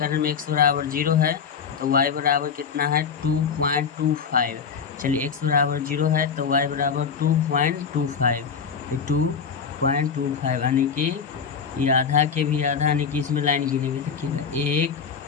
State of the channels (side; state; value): right; quieter; 6.3 dB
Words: में x बराबर 0 है तो y बराबर कितना है 2.25। चलिए x बराबर 0 है तो y बराबर 2.25, तो 2.25 यानी कि ये आधा के भी आधा, यानी कि इसमें लाइन गिनेंगे देखिएगा 1,